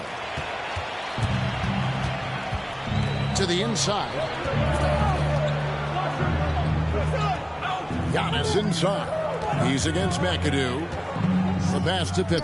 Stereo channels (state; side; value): identical; both; correlation 1.00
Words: To the inside. Giannis inside. He's against McAdoo. The pass to